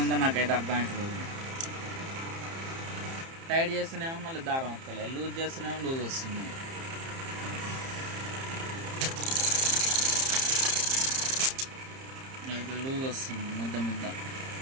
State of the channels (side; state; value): left; late; 30 ms